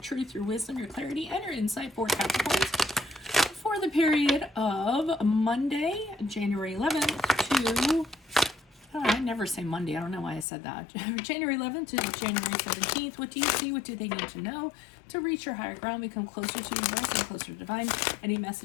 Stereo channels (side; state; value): right; drops out; at 10.5 s